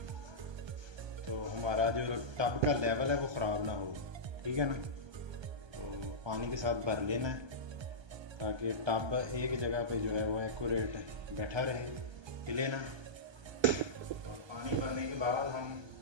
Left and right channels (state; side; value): late; left; 1.3 ms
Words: तो हमारा जो टब का लेवल है वो ख़राब ना हो, ठीक है ना। तो पानी के साथ भर लेना है ताकि टब एक जगह पे जो है वो एक्यूरेट बैठा रहे, हिले ना। और पानी भरने के बाद हम